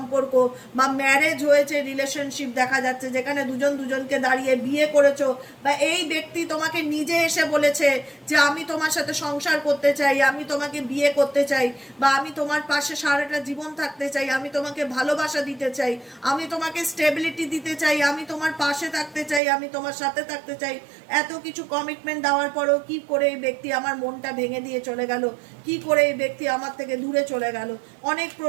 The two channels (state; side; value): drops out; left; at 19.4 s